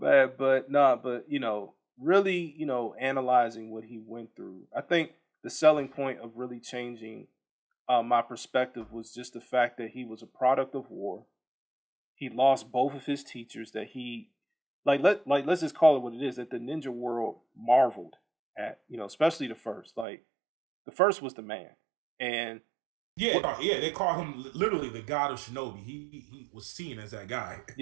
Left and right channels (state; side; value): drops out; left; at 20.1 s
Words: but nah, but really, analyzing what he went through. I think the selling point of really changing my perspective was just the fact that he was a product of war. He lost both of his teachers that he let's just call it what it is, that the ninja world marveled at, especially the first. Like the first was the man. And Yeah, what no, yeah, they call him literally the god of shinobi. He was seen as that guy.